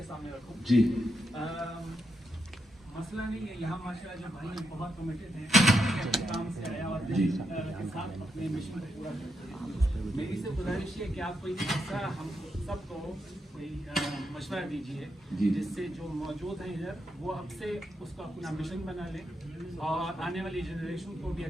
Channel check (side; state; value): both; normal; correlation 0.83